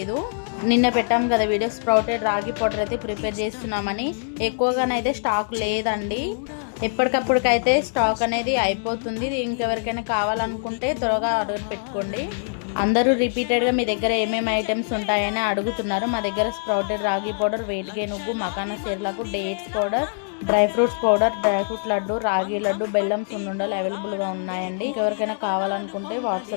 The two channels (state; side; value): silent; right; digital silence